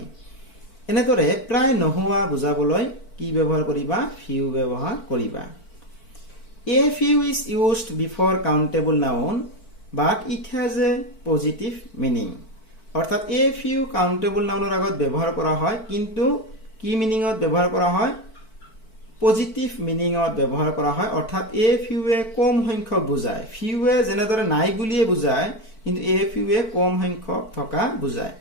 এনেদৰে প্ৰায় নোহোৱা বুজাবলৈ কি ব্যৱহাৰ কৰিবা ফিউ ব্যৱহাৰ কৰিবা। A few is used before countable noun but it has a positive meaning. অৰ্থাৎ a few countable nounৰ আগত ব্যৱহাৰ কৰা হয় কিন্তু কি মিনিংত ব্যৱহাৰ কৰা হয় পজিটিভ মিনিংত ব্যৱহাৰ কৰা হয়। অৰ্থাৎ a fewৱে কম সংখ্যক বুজায়। ফিউৱে যেনেদৰে নাই বুলিয়ে বুজায় কিন্তু a fewৱে কম সংখ্যক থকা বুজায়।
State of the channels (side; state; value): right; late; 4.5 ms